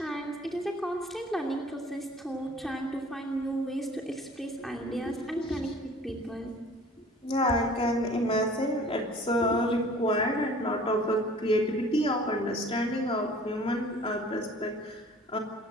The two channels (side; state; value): both; normal; correlation 0.49